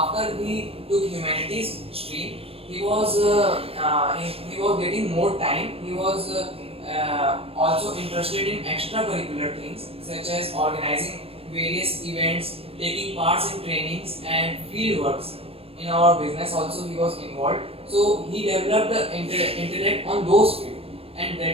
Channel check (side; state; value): left; late; 0.28 ms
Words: he took humanities stream, he was getting more time. He was also interested in extracurricular things such as organizing various events, taking parts in trainings and field works. In our business also he was involved. So he developed the intellect on those fields, and